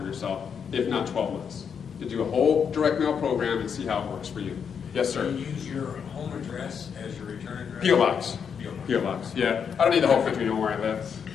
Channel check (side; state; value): right; quieter; 7.0 dB